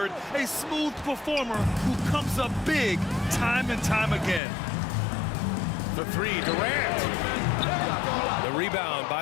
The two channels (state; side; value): drops out; right; at 4.4 s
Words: a smooth performer who comes up big time and time again. The three, Durant. The rebound